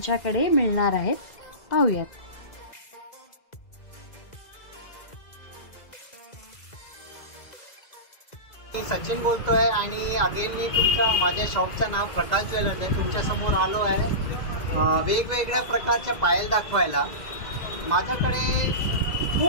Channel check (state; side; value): late; right; 2.0 ms